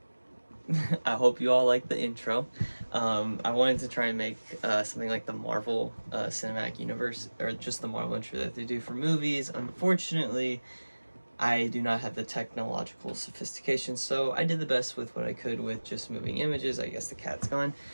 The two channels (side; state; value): both; inverted; correlation -1.00